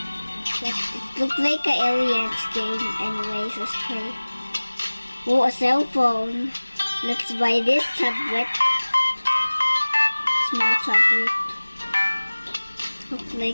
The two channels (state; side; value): inverted; both; correlation -1.00